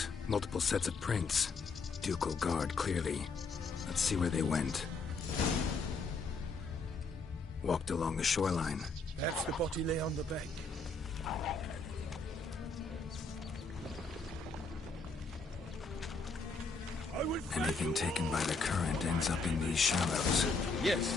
multiple sets of prints. Ducal guard, clearly. Let's see where they went. Walked along the shoreline. Perhaps the body lay on the bank. Anything taken by the current ends up in these shallows.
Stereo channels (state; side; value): quieter; right; 3.9 dB